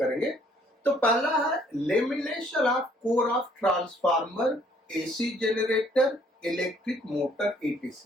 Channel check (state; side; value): normal; both; correlation 0.63